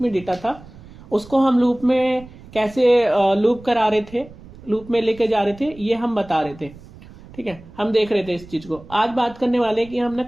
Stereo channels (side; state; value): right; noise; rumble, 20 dB below the sound